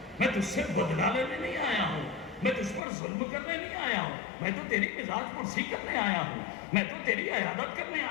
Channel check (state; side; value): drops out; right; at 2.8 s